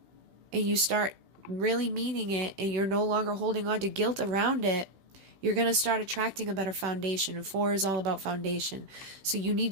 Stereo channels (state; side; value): late; left; 16 ms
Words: and you start really meaning it, and you're no longer holding on to guilt around it, you're going to start attracting a better foundation. And 4 is all about foundation. So you need